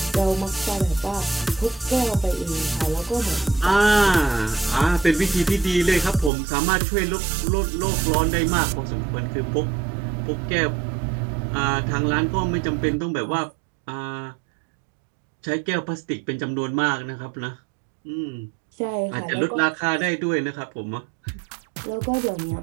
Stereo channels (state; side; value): drops out; left; at 6.3 s